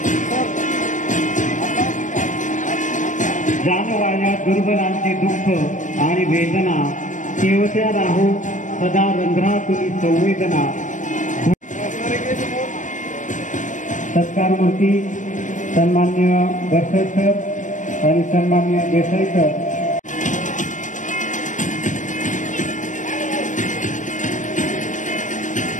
जानवाया दुर्बलांचे दुःख आणि वेदना केवत्या राहू सदा रंध्रातुनी संवेदना। सत्कारमूर्ती सन्मान्य गडकर सर आणि सन्मान्य देसाई सर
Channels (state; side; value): late; right; 0.37 ms